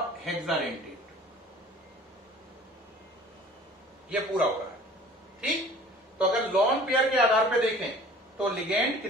हेक्साडेंटेड। ये पूरा हो रहा है, ठीक। तो अगर लॉन पेयर के आधार पे देखें तो लिगेंड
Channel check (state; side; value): normal; both; correlation 0.47